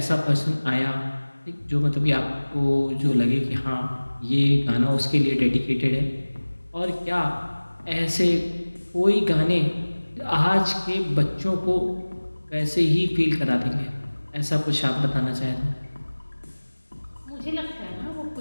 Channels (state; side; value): inverted; both; correlation -1.00